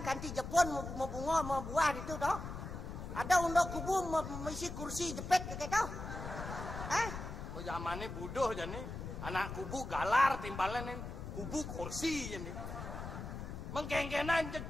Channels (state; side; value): noise; left; rumble, 7 dB below the sound